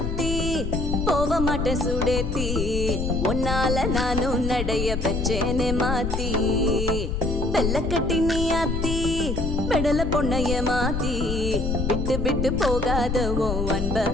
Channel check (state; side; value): noise; left; rumble, 2 dB below the sound